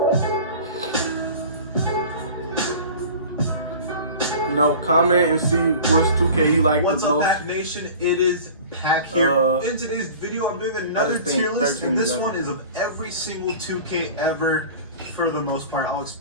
No, comment and see which 2K you like the most. What's up, Pack Nation? It is Pack here. In today's video, I'm doing another tier list, and this one is of every single 2K ever, for the most part. I'll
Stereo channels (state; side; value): inverted; both; correlation -0.40